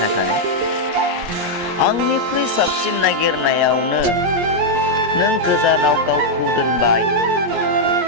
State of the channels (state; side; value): late; left; 17 ms